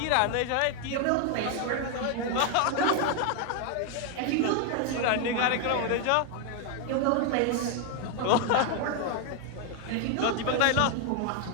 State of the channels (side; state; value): both; different; correlation 0.01